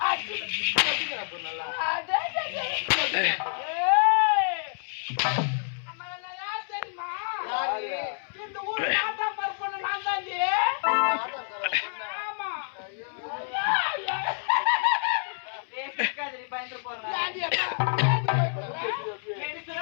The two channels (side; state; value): right; silent; 59 dB below the other